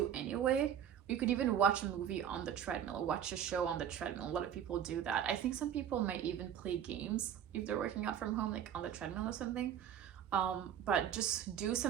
anyway. You could even watch a movie on the treadmill or watch a show on the treadmill. A lot of people do that. I think some people might even play games if they're working out from home, like on the treadmill or something. But just do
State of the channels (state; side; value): quieter; left; 9.4 dB